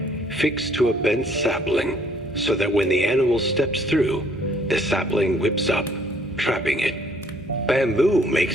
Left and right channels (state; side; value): normal; both; correlation 0.62